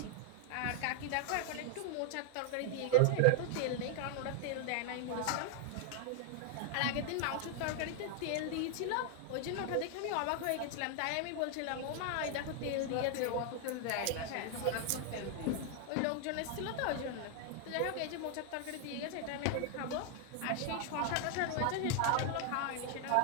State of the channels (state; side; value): different; both; correlation 0.00